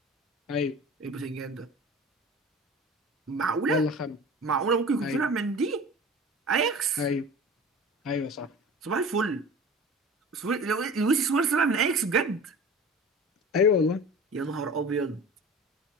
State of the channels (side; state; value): both; normal; correlation 0.38